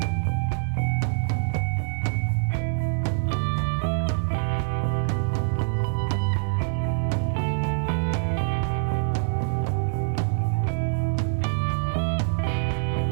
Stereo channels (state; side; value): silent; left; 62 dB below the other